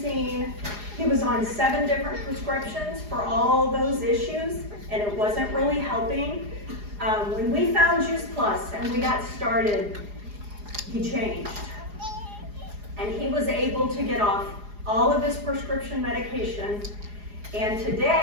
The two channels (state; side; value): late; left; 4.8 ms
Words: He was on 7 different prescriptions for all those issues, and it wasn't really helping. When we found Juice Plus and we got started, he changed. And he was able to get off all of his prescription medication. And